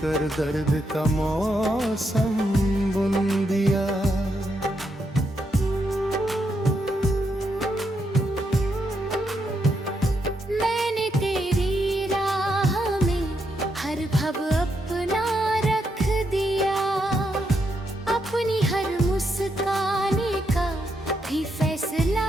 दर्द का मौसम बुन दिया। मैंने तेरी राह में हर भव अपना रख दिया। अपनी हर मुस्काने का भी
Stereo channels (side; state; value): both; normal; correlation 0.80